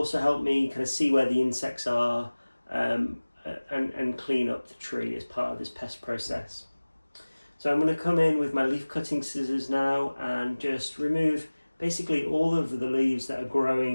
help me kind of see where the insects are and clean up the tree as part of this pest process. So I'm going to come in with my leaf cutting scissors now and just remove basically all of the leaves that are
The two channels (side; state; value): both; inverted; correlation -1.00